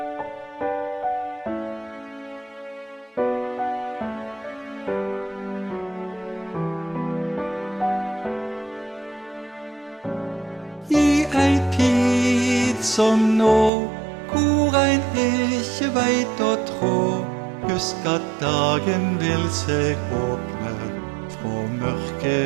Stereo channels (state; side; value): drops out; left; at 13.7 s